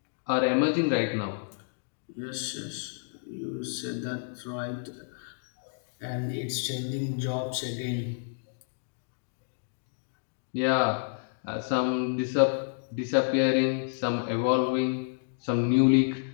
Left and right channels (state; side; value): silent; right; digital silence